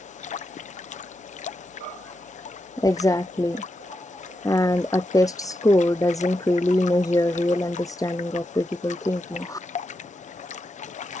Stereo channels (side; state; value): both; normal; correlation 0.86